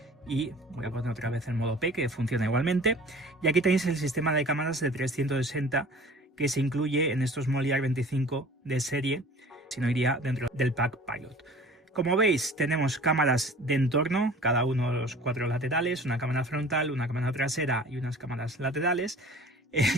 y voy a poner otra vez el modo P, que funciona igualmente. Y aquí tenéis el sistema de cámaras de 360 que se incluye en estos Moliar 25 de serie, si no iría dentro del pack Pilot. Como veis, tenemos cámaras de entorno, cada uno de los 4 laterales, una cámara frontal, una cámara trasera y unas cámaras laterales.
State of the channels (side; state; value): both; normal; correlation 0.45